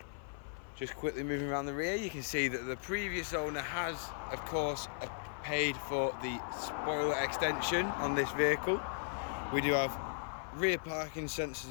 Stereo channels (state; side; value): silent; right; 53 dB below the other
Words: Just quickly moving around the rear, you can see that the previous owner has, of course, paid for the spoiler extension on this vehicle. We do have rear parking